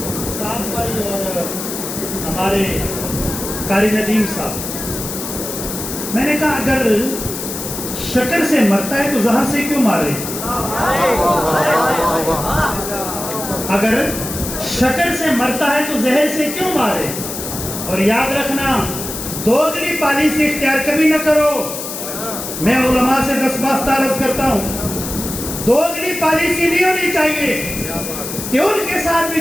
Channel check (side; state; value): left; noise; hiss, 7 dB below the sound